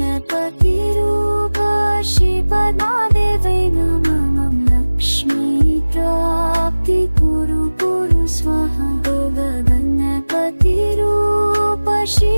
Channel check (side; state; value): both; inverted; correlation -1.00